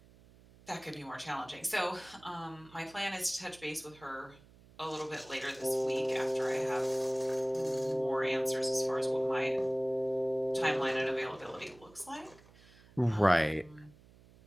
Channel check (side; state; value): right; noise; hum, 25 dB below the sound